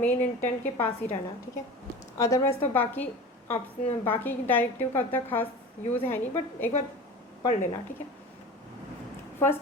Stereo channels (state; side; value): normal; both; correlation 0.34